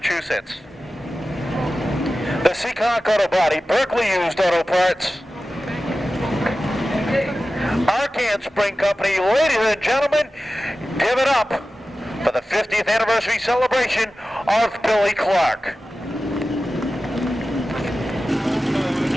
the Seekonk Auto Body, Berkeley Used Auto Parts, Arcan Spring Company, ladies and gentlemen, give it up for the 50th anniversary celebration of Billy Clark.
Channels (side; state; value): both; normal; correlation 0.94